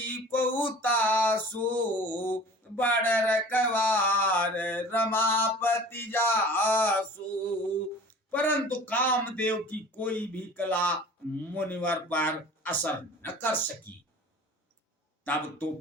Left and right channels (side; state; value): both; normal; correlation 0.43